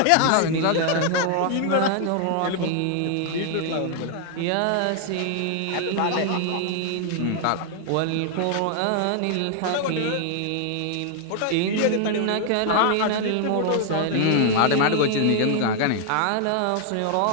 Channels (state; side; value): different; both; correlation 0.00